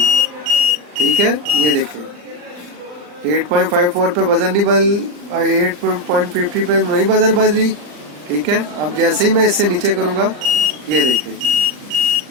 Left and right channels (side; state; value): left; late; 40 ms